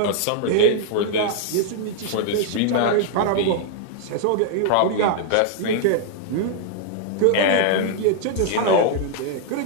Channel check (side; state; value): both; different; correlation 0.00